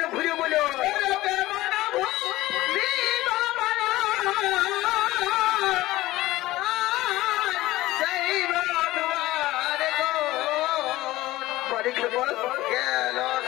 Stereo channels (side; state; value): right; quieter; 17.3 dB